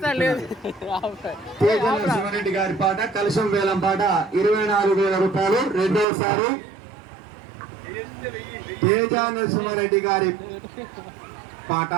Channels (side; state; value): left; drops out; at 6.1 s